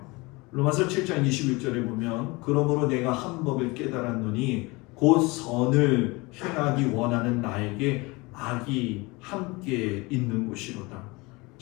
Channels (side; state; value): right; quieter; 24.7 dB